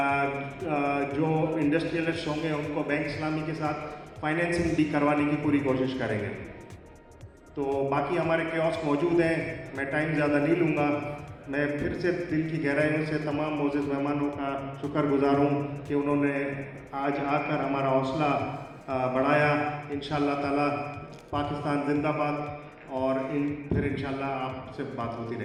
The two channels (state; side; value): identical; both; correlation 1.00